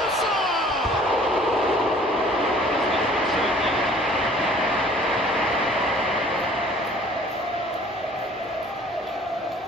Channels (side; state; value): both; normal; correlation 0.53